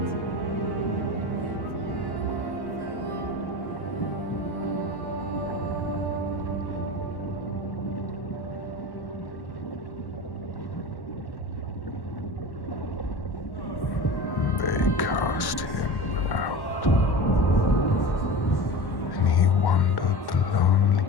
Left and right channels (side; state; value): right; late; 1.1 ms